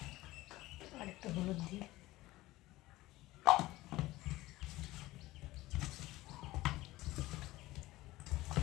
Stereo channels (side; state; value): right; quieter; 18.1 dB